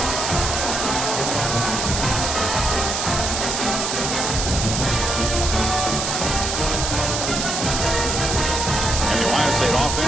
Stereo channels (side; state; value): right; noise; hiss, 2 dB below the sound